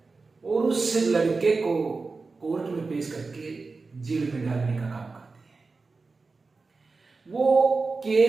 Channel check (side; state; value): left; quieter; 4.0 dB